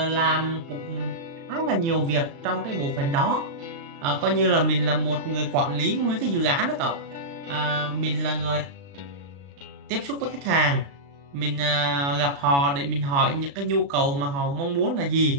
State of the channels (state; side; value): late; left; 36 ms